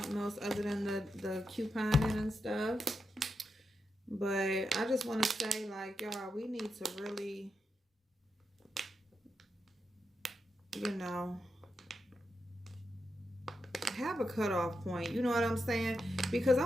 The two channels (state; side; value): normal; both; correlation 0.86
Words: else other than the couponing and stuff. But I just want to say, like, y'all, we need to really, you know, have a cutoff point. You know what I'm saying? Because I'm